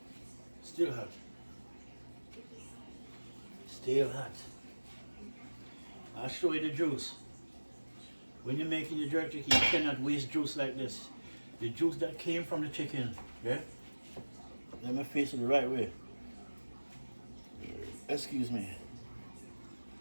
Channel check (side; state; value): both; inverted; correlation -1.00